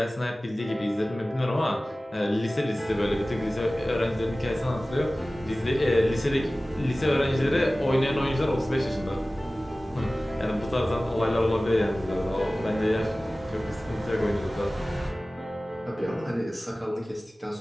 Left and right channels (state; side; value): normal; both; correlation 0.97